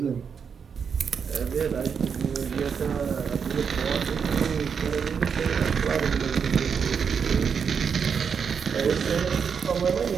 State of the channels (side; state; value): left; quieter; 6.5 dB